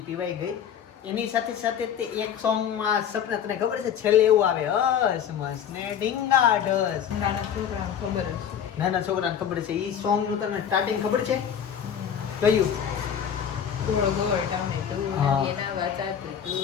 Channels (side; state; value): right; quieter; 8.6 dB